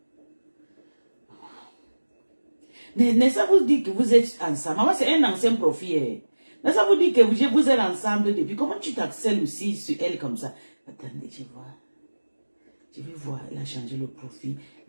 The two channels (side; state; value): both; inverted; correlation -1.00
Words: Mais ça vous dit que vous êtes ensemble? Maman, c'est un ancien profil. Mais ça vous dit que vous êtes ensemble depuis. Comment tu t'accèles aussi sur elle comme ça? Attendez, je vois. Je vais voir. Elle a changé le profil